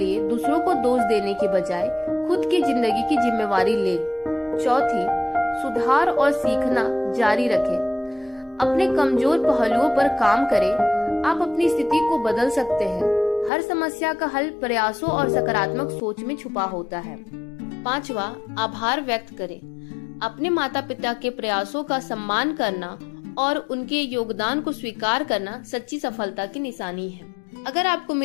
दूसरों को दोष देने के बजाय खुद की जिंदगी की जिम्मेवारी ले। चौथी, सुधार और सीखना जारी रखें। अपने कमजोर पहलुओं पर काम करें। आप अपनी स्थिति को बदल सकते हैं। हर समस्या का हल प्रयासों और सकारात्मक सोच में छुपा होता है। पांचवा, आभार व्यक्त करें। अपने माता पिता के प्रयासों का सम्मान करना और उनके योगदान को स्वीकार करना सच्ची सफलता की निशानी है। अगर आपको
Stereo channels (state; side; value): drops out; right; at 13.5 s